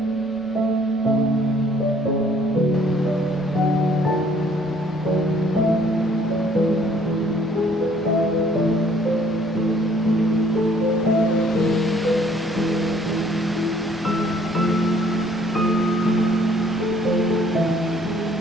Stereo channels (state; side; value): normal; both; correlation 0.60